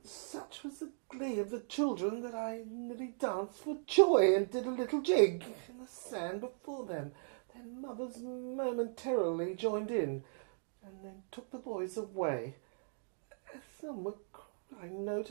Such was the glee of the children that I nearly danced for joy and did a little jig in the sand before them. Their mothers momentarily joined in, and then took the boys away. Some I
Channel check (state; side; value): silent; left; digital silence